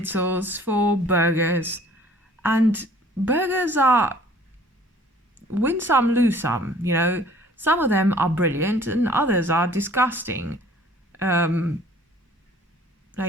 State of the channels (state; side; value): normal; both; correlation 0.53